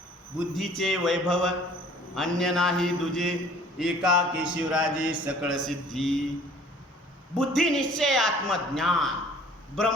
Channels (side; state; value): both; normal; correlation 0.52